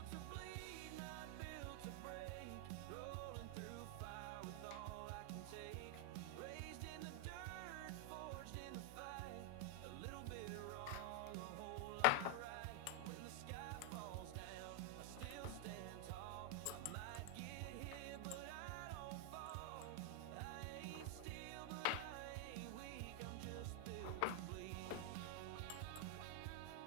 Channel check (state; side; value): different; both; correlation 0.00